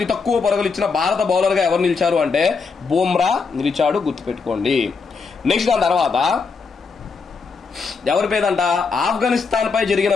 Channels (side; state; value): right; quieter; 4.9 dB